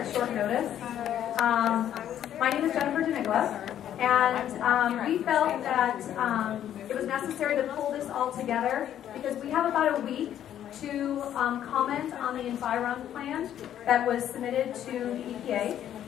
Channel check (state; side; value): quieter; right; 10.7 dB